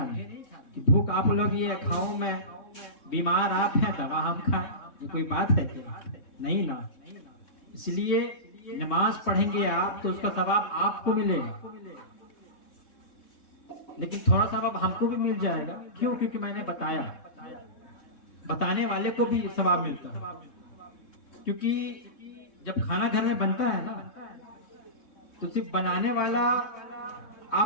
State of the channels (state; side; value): late; right; 3.6 ms